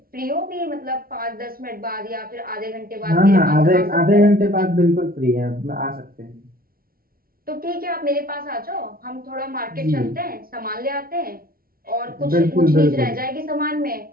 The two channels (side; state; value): left; late; 0.43 ms